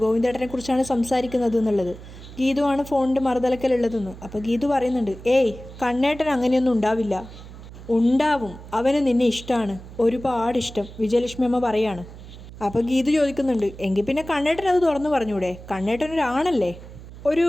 ഗോവിന്ദേട്ടനെ കുറിച്ചാണ് സംസാരിക്കുന്നത് എന്നുള്ളത്. ഗീതുവാണ് ഫോണിൻ്റെ മറുതലക്കലുള്ളതെന്ന്. അപ്പോൾ ഗീതു പറയുന്നുണ്ട്, ഏയ് കണ്ണേട്ടൻ അങ്ങനെയൊന്നും ഉണ്ടാവില്ല. ഉണ്ടാവും, അവന് നിന്നെ ഇഷ്ടമാണ്, ഒരുപാട് ഇഷ്ടം, വിജയലക്ഷ്മി അമ്മ പറയാണ്. അപ്പോൾ ഗീതു ചോദിക്കുന്നുണ്ട്, എങ്കിൽ പിന്നെ കണ്ണേട്ടൻ അത് തുറന്നു പറഞ്ഞൂടെ? കണ്ണേട്ടനൊരാണല്ലേ? ഒരു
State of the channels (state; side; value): noise; right; hum, 16 dB below the sound